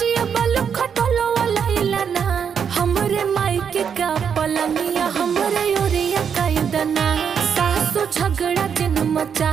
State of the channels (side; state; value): left; quieter; 7.3 dB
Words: बलु खटोलो लहिला ना हमरे मायके का पलंगिया हमरे ओरिया कैदना सासु झगड़ा दिन